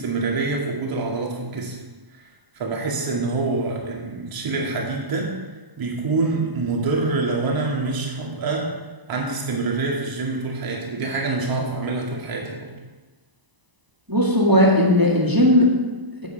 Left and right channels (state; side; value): late; left; 1.0 ms